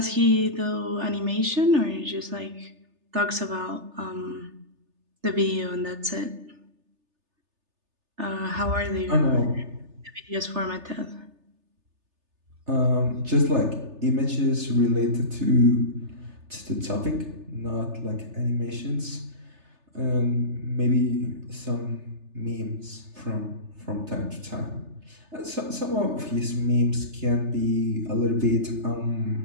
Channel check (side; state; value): left; late; 3.3 ms